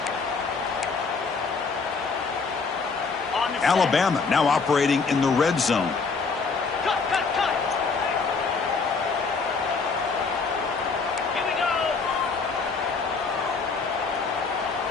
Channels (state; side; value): quieter; right; 4.7 dB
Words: Alabama now operating in the red zone. Cut. Here we go.